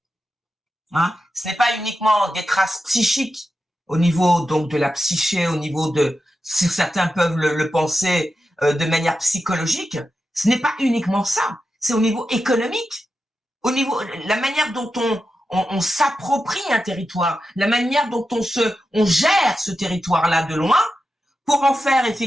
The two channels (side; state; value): both; normal; correlation 0.90